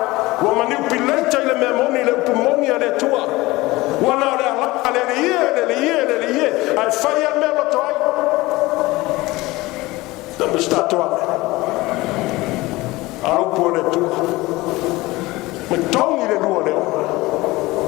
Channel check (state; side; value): quieter; right; 20.3 dB